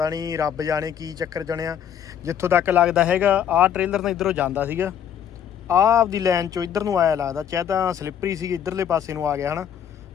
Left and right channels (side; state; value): right; quieter; 9.1 dB